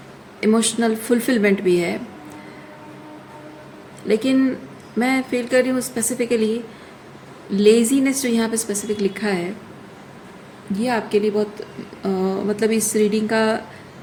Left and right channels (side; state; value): both; identical; correlation 1.00